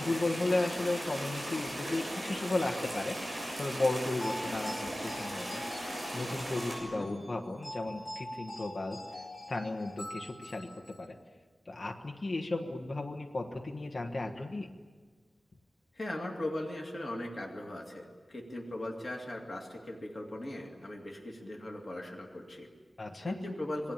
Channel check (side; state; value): both; normal; correlation 0.96